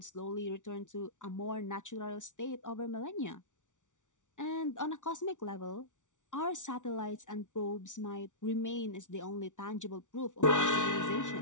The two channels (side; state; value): right; late; 0.87 ms